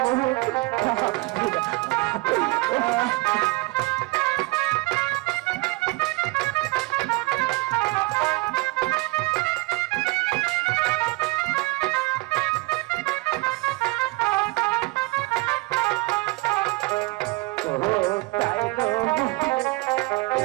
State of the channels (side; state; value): left; quieter; 23.2 dB